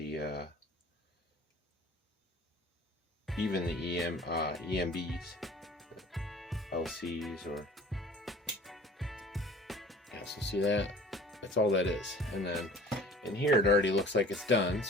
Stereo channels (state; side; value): normal; both; correlation 0.47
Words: even the EMBs, LCs, or yeah. So see that? That's all that is. And then in here it already looks like it's done,